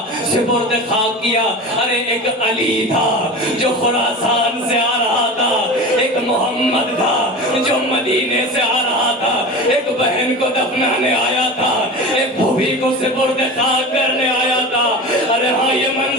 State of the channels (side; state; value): both; normal; correlation 0.31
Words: سپرد خاک کیا. ارے ایک علی تھا جو خراسان سے آ رہا تھا, ایک محمد تھا جو مدینے سے آ رہا تھا, ایک بہن کو دفنانے آیا تھا, ایک بھوبھی کو سپرد خاک کرنے آیا تھا. ارے ہاں یہ